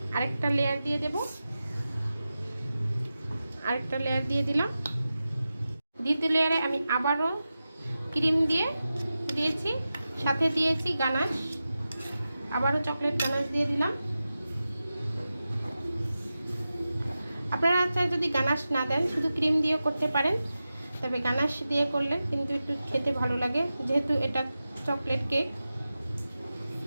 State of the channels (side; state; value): both; inverted; correlation -0.93